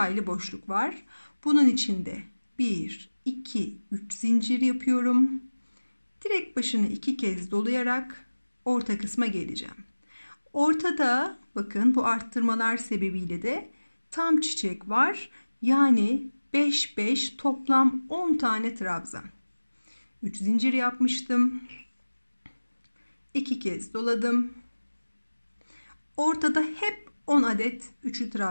aylı boşluk var. Bunun içinde 1, 2, 3 zincir yapıyorum. Direkt başını 2 kez dolayarak orta kısma geleceğim. Ortada bakın bu arttırmalar sebebiyle de tam çiçek var. Yani 5, 5 toplam 10 tane trabzan. 3 zincir yapmıştım. 2 kez doladım. Ortada hep 10 adet üçlü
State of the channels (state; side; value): inverted; both; correlation -1.00